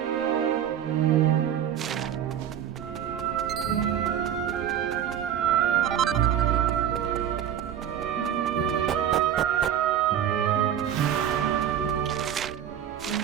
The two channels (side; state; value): left; quieter; 9.7 dB